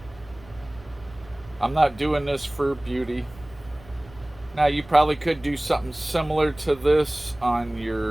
I'm not doing this for beauty. Now you probably could do something similar to this on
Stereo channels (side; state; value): right; noise; rumble, 22 dB below the sound